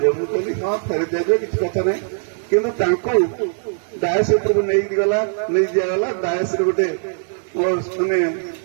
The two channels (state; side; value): silent; left; 57 dB below the other